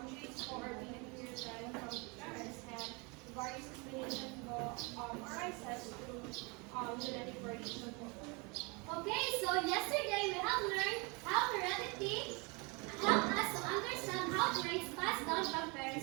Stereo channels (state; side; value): quieter; left; 29.6 dB